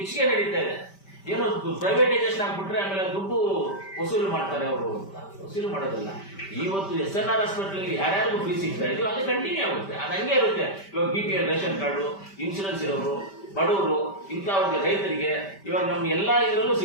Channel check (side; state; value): right; late; 5.1 ms